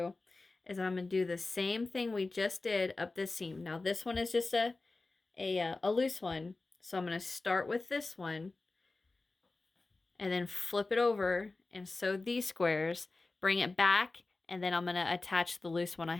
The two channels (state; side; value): quieter; right; 3.4 dB